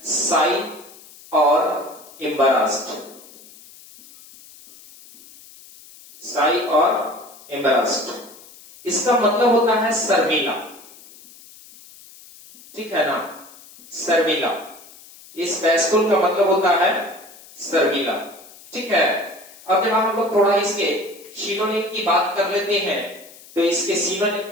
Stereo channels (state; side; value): noise; left; hiss, 21 dB below the sound